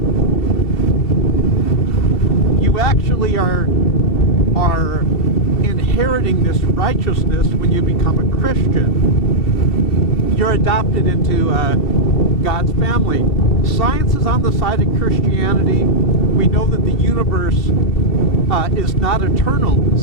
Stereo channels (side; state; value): right; late; 2.7 ms